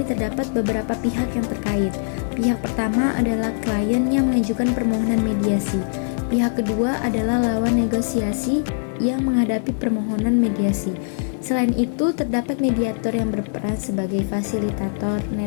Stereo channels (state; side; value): silent; right; 57 dB below the other